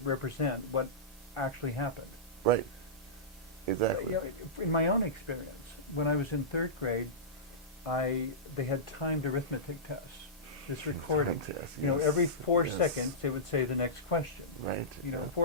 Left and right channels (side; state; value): both; normal; correlation -0.18